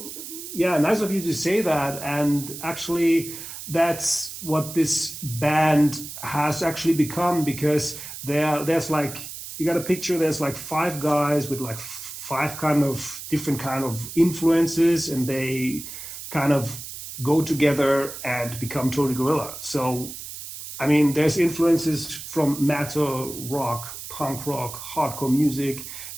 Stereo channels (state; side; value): noise; right; hiss, 11 dB below the sound